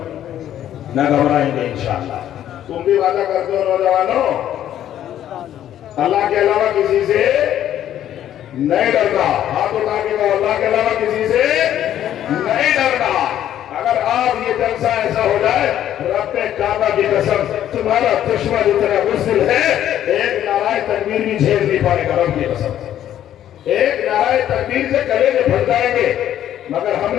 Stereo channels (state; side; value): quieter; right; 11.3 dB